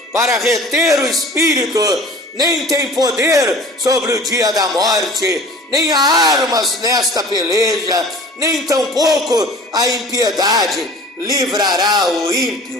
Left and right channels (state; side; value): normal; both; correlation 0.44